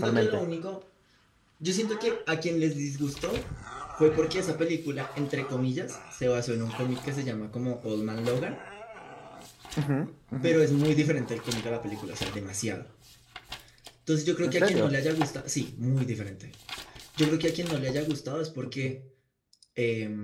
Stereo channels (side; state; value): both; identical; correlation 1.00